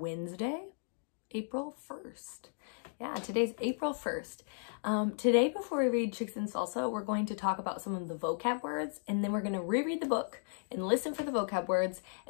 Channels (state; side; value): silent; right; digital silence